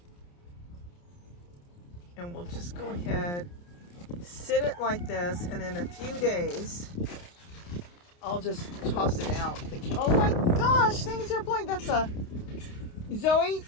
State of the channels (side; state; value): right; late; 29 ms